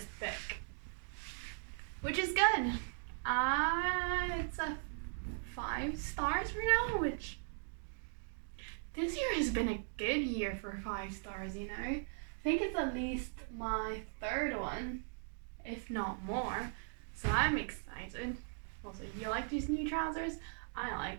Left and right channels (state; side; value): silent; left; digital silence